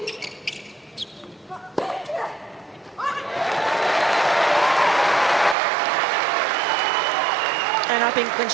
And I think when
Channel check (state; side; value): drops out; left; at 5.6 s